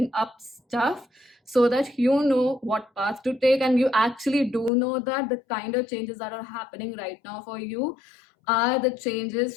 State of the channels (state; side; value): drops out; right; at 4.7 s